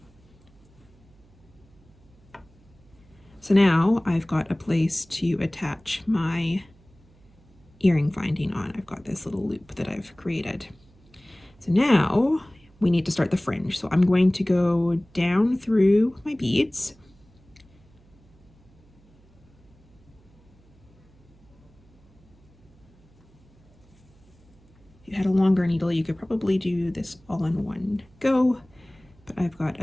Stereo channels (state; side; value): noise; right; hum, 29 dB below the sound